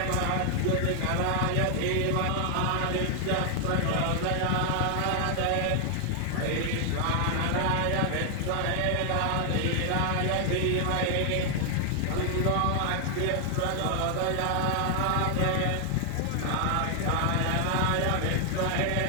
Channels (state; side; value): different; both; correlation 0.00